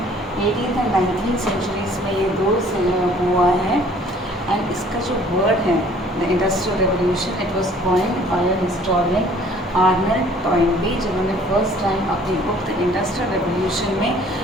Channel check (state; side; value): normal; both; correlation 0.55